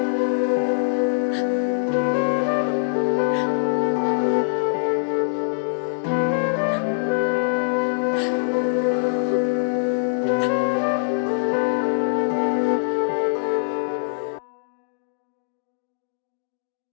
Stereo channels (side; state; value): right; silent; digital silence